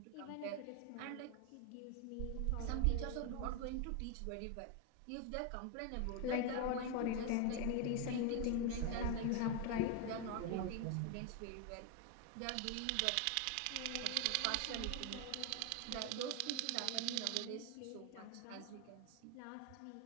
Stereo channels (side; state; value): both; different; correlation 0.01